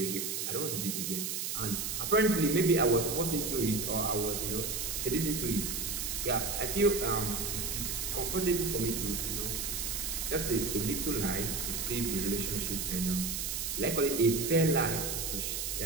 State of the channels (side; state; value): right; noise; hiss, 2 dB below the sound